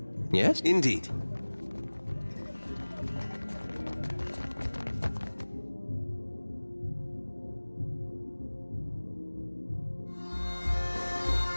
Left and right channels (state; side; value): inverted; both; correlation -1.00